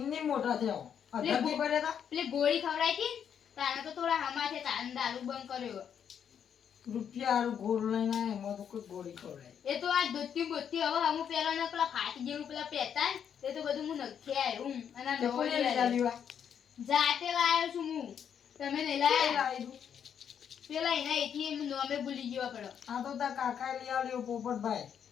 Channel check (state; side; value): quieter; right; 8.2 dB